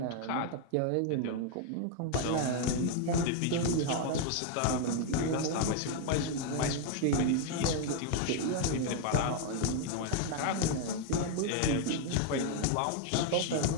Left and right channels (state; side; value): different; both; correlation 0.00